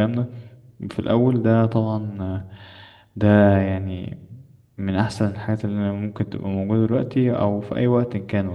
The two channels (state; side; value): identical; both; correlation 1.00